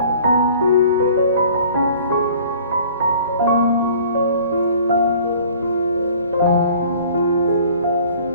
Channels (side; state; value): both; inverted; correlation -0.50